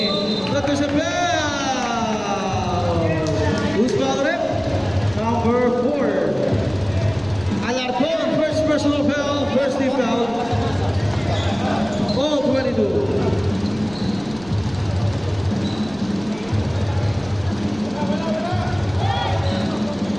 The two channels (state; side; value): noise; right; rumble, 20 dB below the sound